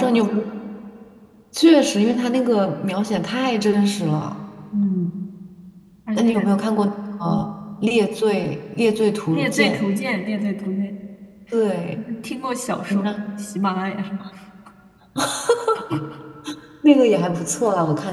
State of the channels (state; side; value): identical; both; correlation 1.00